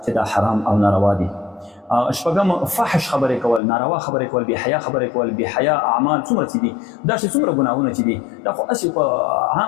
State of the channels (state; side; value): drops out; right; at 3.6 s